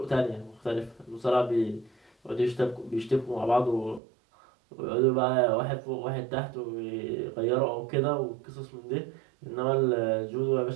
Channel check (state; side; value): drops out; left; at 4.0 s